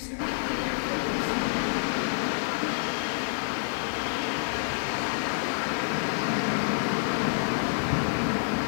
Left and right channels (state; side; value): silent; right; 59 dB below the other